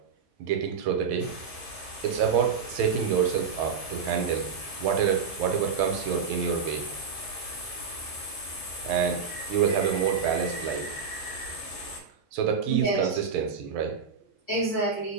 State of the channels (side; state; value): left; quieter; 5.9 dB